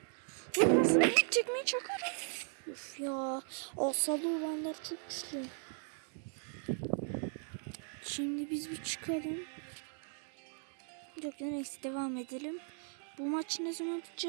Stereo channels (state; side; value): silent; left; 53 dB below the other